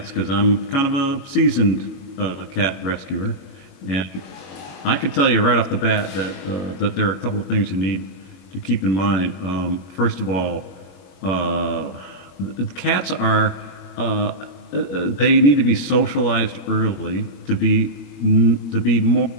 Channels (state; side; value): late; right; 22 ms